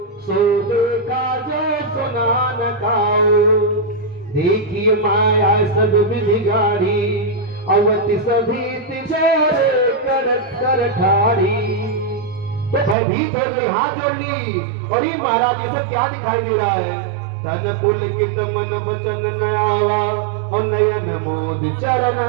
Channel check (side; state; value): left; drops out; at 13.0 s